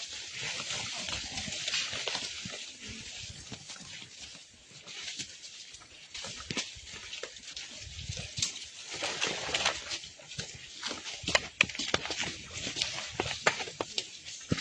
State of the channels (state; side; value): identical; both; correlation 1.00